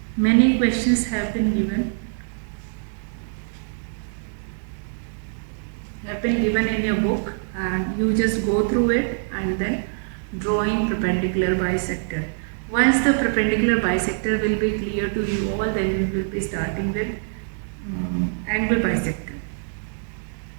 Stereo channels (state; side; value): silent; left; 63 dB below the other